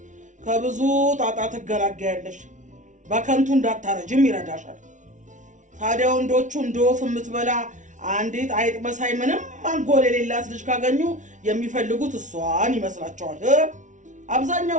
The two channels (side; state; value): left; late; 0.37 ms